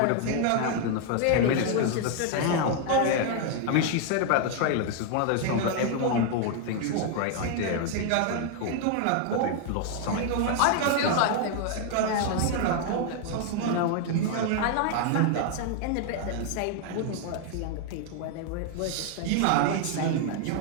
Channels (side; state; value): both; different; correlation 0.00